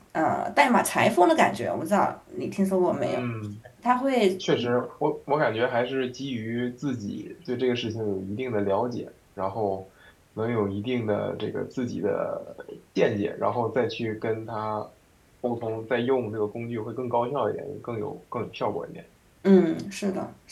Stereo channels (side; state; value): both; identical; correlation 1.00